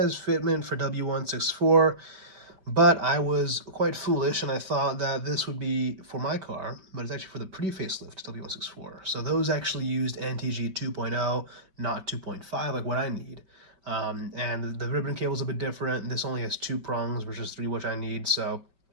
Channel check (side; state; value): left; late; 5.2 ms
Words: fitment for W164, But I was quite foolish, and I thought that this would be for my car, but it's actually for the pre-facelift W164. So those actually used NTG 2.0, not 2.5, like what I need. And the ribbon cable is a bit different. This only has 2 prongs versus 3, which I need. So